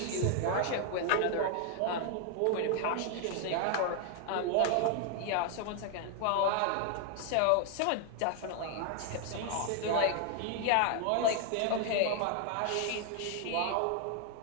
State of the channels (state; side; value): different; both; correlation 0.00